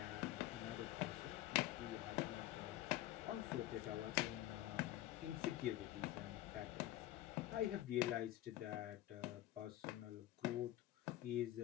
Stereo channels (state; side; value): quieter; right; 14.6 dB